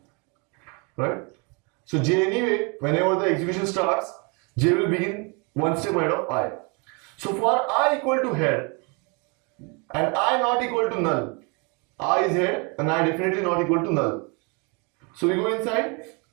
right? So J anyway, whenever the execution starts, J will begin one step ahead of I. So for I equal to head and I not equal to null, I is head and I definitely not equal to null. So we go inside,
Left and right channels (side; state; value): left; quieter; 31.9 dB